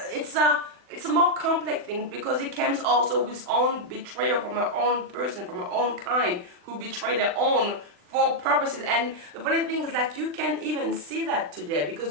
it's a more complex thing because it comes also with own betrayal from our own person, from our own kind, who betray their own for purposes. And the funny thing is like, you can't even see that today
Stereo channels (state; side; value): late; left; 40 ms